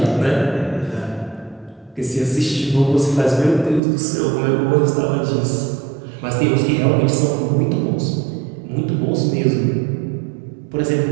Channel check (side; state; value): left; drops out; at 3.8 s